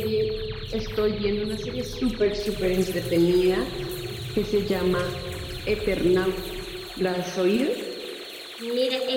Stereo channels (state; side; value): identical; both; correlation 1.00